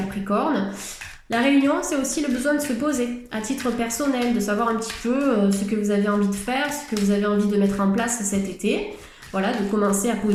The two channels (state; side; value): identical; both; correlation 1.00